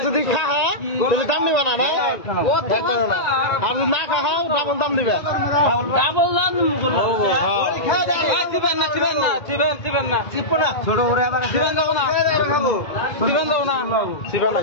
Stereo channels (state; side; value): late; right; 1.8 ms